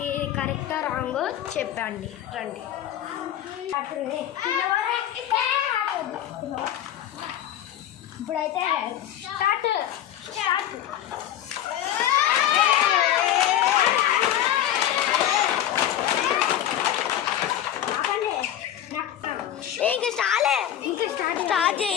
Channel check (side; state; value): right; quieter; 11.3 dB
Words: ఇది కరెక్టా రాంగో చెప్పండి. రండి ఇప్పుడైతే స్టార్ట్. ఇంకా స్టార్ట్